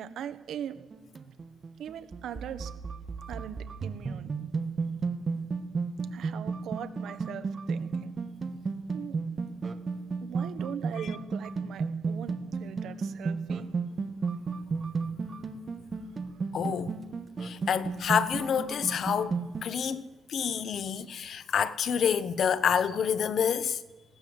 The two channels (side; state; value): both; normal; correlation 0.75